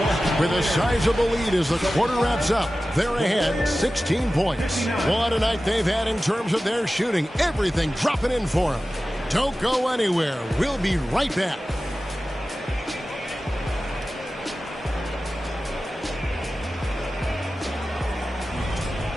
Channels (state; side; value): normal; both; correlation 0.95